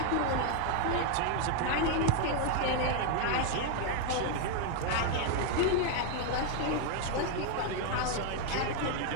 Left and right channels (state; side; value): different; both; correlation 0.00